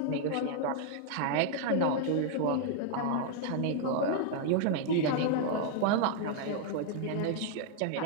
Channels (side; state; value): both; different; correlation 0.00